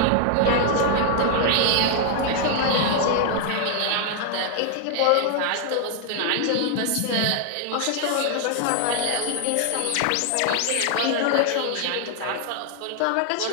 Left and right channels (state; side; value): different; both; correlation 0.00